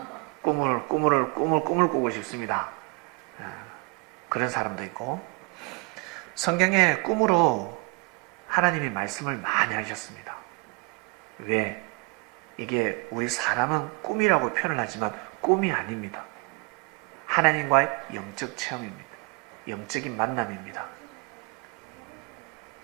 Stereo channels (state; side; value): quieter; left; 29.1 dB